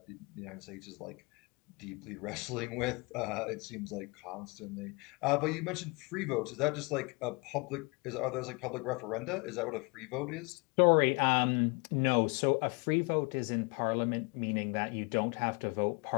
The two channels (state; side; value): quieter; right; 29.5 dB